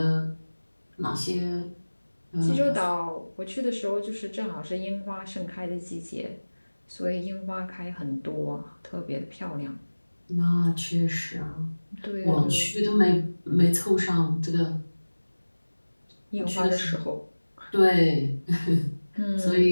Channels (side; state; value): both; inverted; correlation -1.00